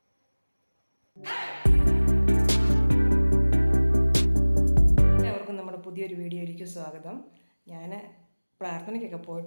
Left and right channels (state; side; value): inverted; both; correlation -1.00